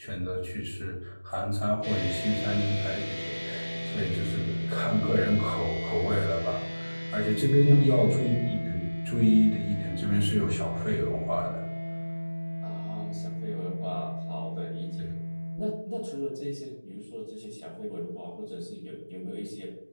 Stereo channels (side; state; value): both; inverted; correlation -1.00